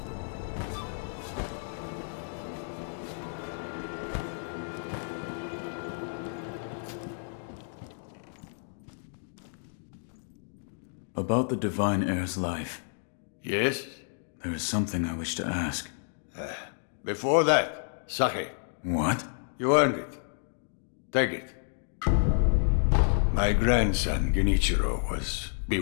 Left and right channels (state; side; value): silent; right; digital silence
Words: About the Divine Heir's life. Yes? There is something I wish to ask. Before that, sake. What? You earned it. Take it. My grandson, Genichiro, was